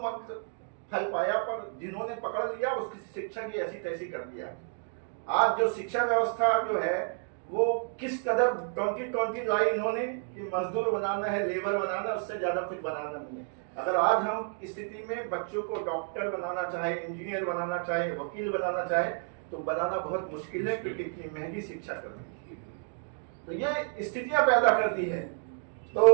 फल पाया, पर जिन्होंने पकड़ लिया उसकी शिक्षा की ऐसी तैसी कर दिया। आज जो शिक्षा व्यवस्था जो है वो किस कदर 2020 लाई इन्होंने कि मजदूर बनाना है, लेबर बनाना, उससे ज्यादा कुछ बनाना नहीं है। अगर आज हम इस स्थिति में बच्चों को डॉक्टर बनाना चाहे, इंजीनियर बनाना चाहे, वकील बनाना चाहे, तो बनाना बहुत मुश्किल है क्योंकि इतनी महंगी शिक्षा करनी है। तो ये स्थितियां पैदा कर दी है। तो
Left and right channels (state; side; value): silent; left; 57 dB below the other